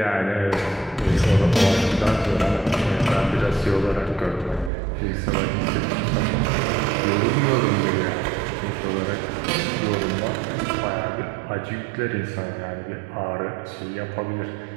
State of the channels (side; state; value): left; drops out; at 4.7 s